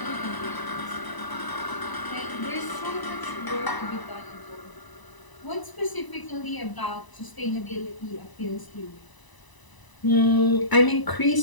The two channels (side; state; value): right; late; 1.0 ms